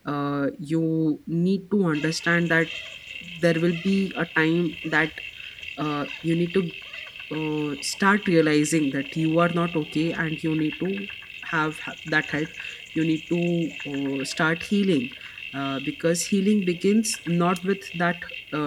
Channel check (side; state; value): both; identical; correlation 1.00